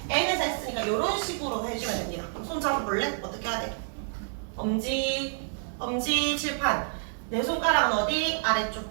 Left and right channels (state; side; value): silent; left; digital silence